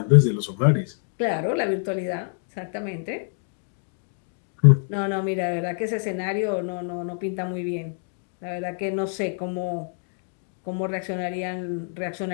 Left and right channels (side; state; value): right; silent; digital silence